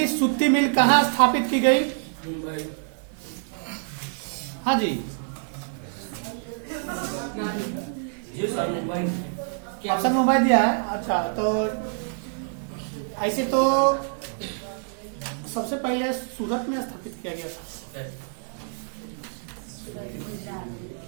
सूती मिल कहाँ स्थापित की गई? हाँ जी, ऑप्शन मुंबई दिया है। अच्छा, तो ऐसे तो सबसे पहले सूरत में स्थापित किया गया था।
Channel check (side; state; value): left; silent; 61 dB below the other